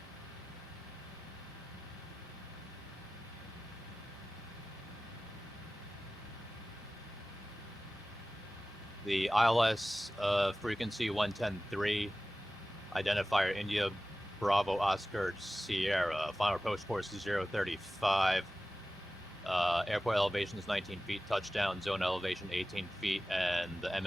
The ILS frequency 110.3, identifier India Bravo Oscar Sierra, final approach course 035. Airport elevation is 19 feet, touchdown zone elevation 18 feet, and the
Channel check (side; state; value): both; normal; correlation 0.96